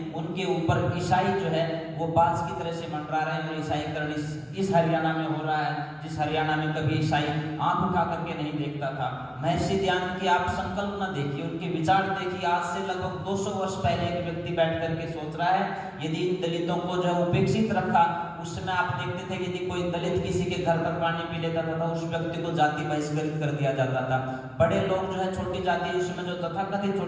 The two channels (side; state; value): both; identical; correlation 1.00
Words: उनके ऊपर ईसाई जो है वो बाज की तरह से मंडरा रहे हैं। और ईसाईकरण इस हरियाणा में हो रहा है, जिस हरियाणा में कभी ईसाई आंख उठा करके नहीं देखता था। महर्षि दयानंद की आप संकल्पना देखिए, उनके विचार देखिए। आज से लगभग 200 वर्ष पहले एक व्यक्ति बैठ करके सोच रहा है, यदि इन दलितों को जो उपेक्षित रखा, उस समय आप देखते थे यदि कोई दलित किसी के घर पर पानी पी लेता था, उस व्यक्ति को जाति बहिष्कृत कर दिया जाता था। बड़े लोग जो है छोटी जाति, उस समय जो तथाकथित